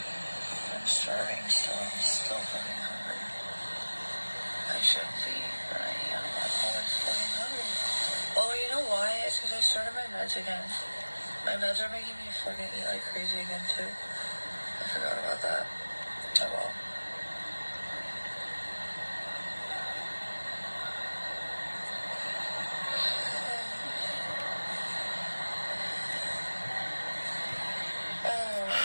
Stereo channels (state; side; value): inverted; both; correlation -1.00